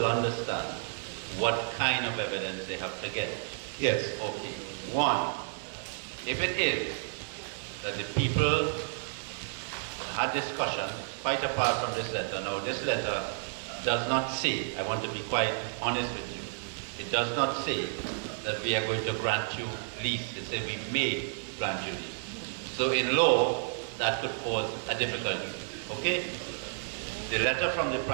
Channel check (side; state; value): left; silent; digital silence